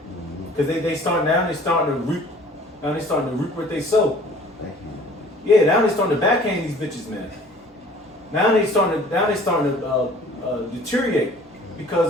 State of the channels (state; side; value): normal; both; correlation 0.50